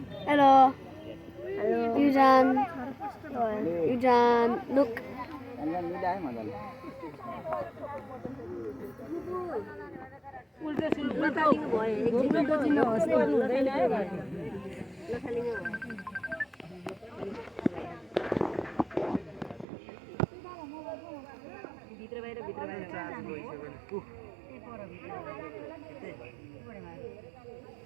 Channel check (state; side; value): drops out; left; at 19.7 s